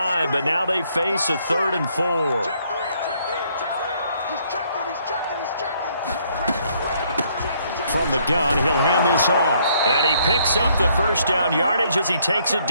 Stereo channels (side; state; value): both; inverted; correlation -0.68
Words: but now they face a 3rd and 4. From the gun, he'll hand this off. And he picks up the 1st down yardage as he takes it